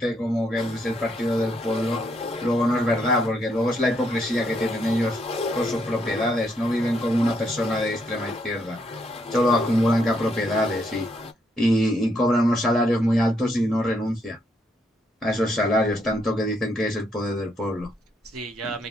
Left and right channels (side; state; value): both; normal; correlation 0.75